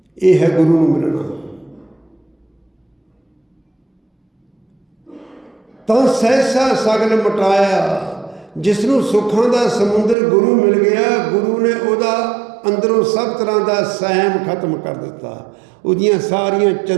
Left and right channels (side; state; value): left; drops out; at 10.2 s